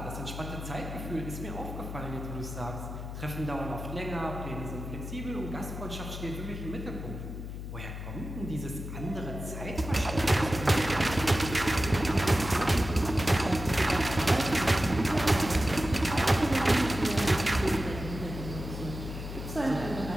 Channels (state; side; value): noise; left; hum, 8 dB below the sound